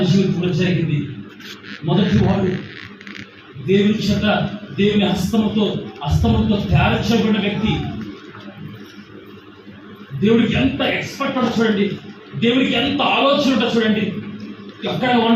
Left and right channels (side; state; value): both; identical; correlation 1.00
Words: జీవితంలో జరిగింది. మొదటి వాడు దేవుని చేత, దేవుని హస్తముతో తయారు చేయబడిన వ్యక్తి. దేవుడికి ఎంత ఎక్స్పర్ట్ ఉంటుందో చూడండి, దేవుడికి ఎంత ఆలోచన ఉంటుందో చూడండి. ఎక్కడ